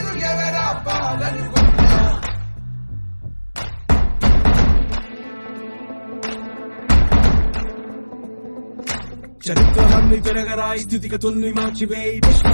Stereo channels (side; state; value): both; inverted; correlation -1.00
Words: ఎవరా పాలనుకున్నా. చరిత్రలన్నీ తిరగరాయి, స్థితిగతుల్ని మార్చివేయి,